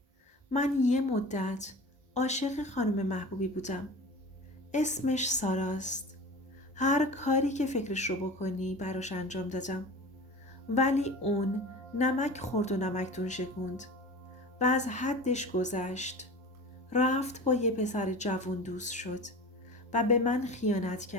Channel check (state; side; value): normal; both; correlation 0.35